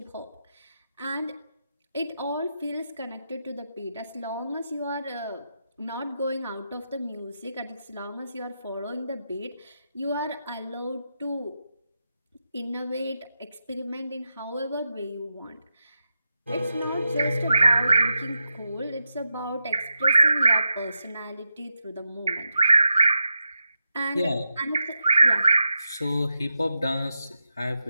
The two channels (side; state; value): both; inverted; correlation -0.88